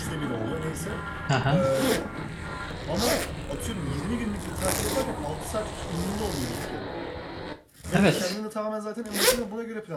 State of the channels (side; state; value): both; identical; correlation 1.00